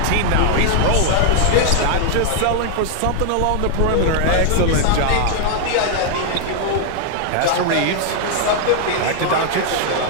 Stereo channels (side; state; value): both; different; correlation 0.00